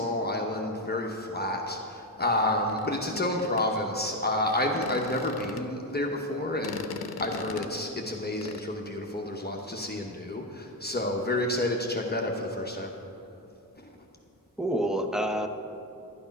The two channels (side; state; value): both; normal; correlation 0.10